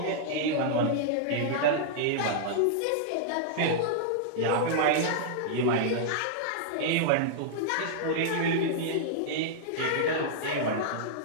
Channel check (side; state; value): both; different; correlation -0.02